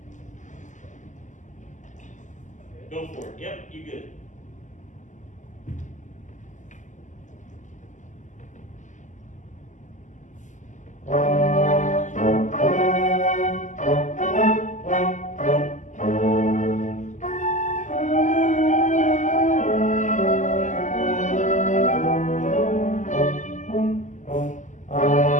Go for it. Yep, you good.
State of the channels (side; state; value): right; late; 0.36 ms